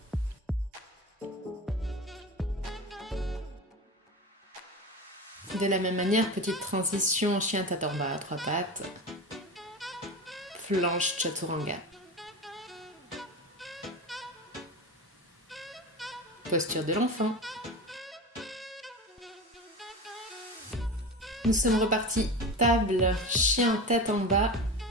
De la même manière, petite transition chien tête en bas à 3 pattes. Planche chaturanga. Posture de l'enfant. Nous sommes repartis table, chien tête en bas.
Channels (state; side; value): normal; both; correlation 0.28